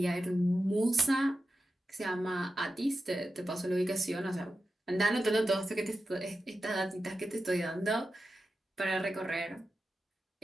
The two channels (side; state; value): both; normal; correlation 0.91